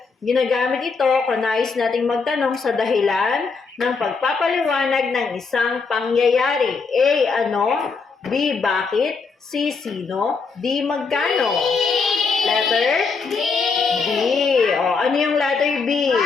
Ginagamit ito kung nais nating magtanong sa dahilan ng pagpapaliwanag ng isang pangyayari. A. Ano? B. Bakit? C. Sino? D. Magkano? Letter? B. Ano yung letter B?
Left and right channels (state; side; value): quieter; right; 4.8 dB